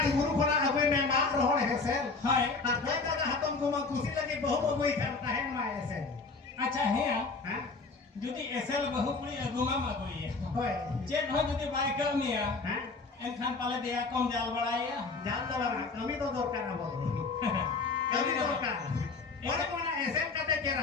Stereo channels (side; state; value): right; quieter; 4.1 dB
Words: गुरु खना अबे में मार रोहड़ हेसेल हाय आ दे दादा हातम को मा खुशी लगे बहु बबुई करता है मा ऐसे अच्छा है हां जुदी एसएल बहु पुरी अगुमा मगोई होय चेक हो जुदी बाय कमिया हां एनखान पाले दिया कम जाल बड़ाया जाल दवारा कमी तो दरकार अब कमी दरकार और कोना ऐसे कते